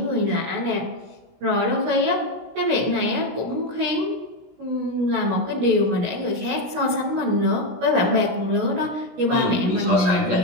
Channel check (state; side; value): late; left; 17 ms